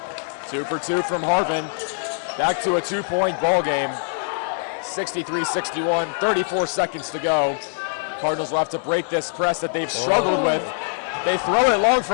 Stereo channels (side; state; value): right; silent; digital silence